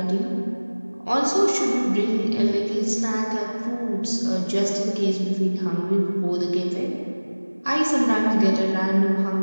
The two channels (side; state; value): both; inverted; correlation -1.00